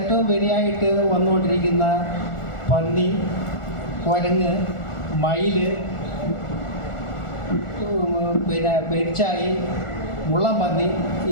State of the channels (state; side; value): late; right; 1.4 ms